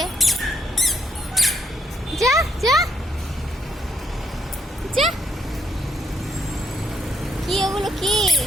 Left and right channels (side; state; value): both; normal; correlation 0.74